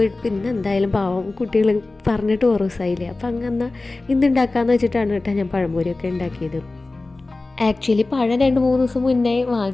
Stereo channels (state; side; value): quieter; right; 3.2 dB